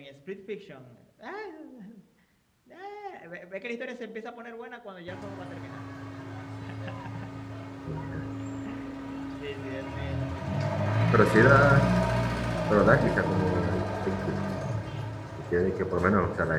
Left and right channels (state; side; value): identical; both; correlation 1.00